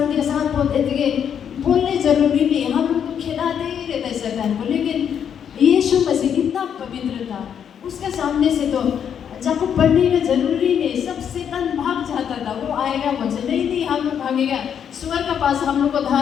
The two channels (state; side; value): quieter; right; 8.3 dB